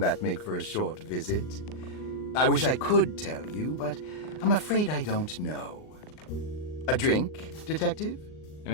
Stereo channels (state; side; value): late; right; 39 ms